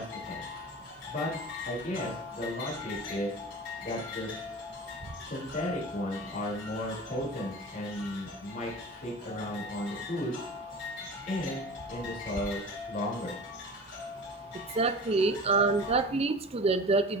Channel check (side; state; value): both; normal; correlation 0.36